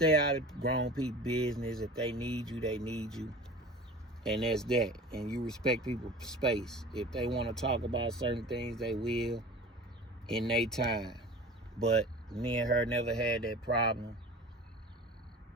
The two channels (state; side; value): normal; both; correlation 0.39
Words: out of grown people's business. If they need you, they need you. And that's that. And you respect people's space. If they want to talk about certain things, they will in their time. But me and her never had that problem.